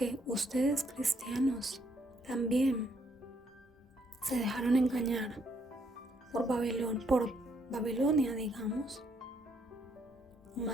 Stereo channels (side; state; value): both; normal; correlation 0.71